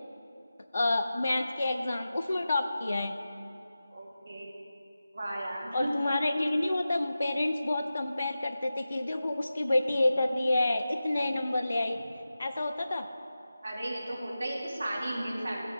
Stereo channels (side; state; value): both; inverted; correlation -0.94